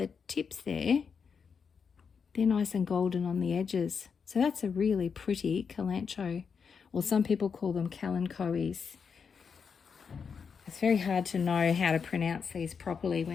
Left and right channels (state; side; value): quieter; right; 6.1 dB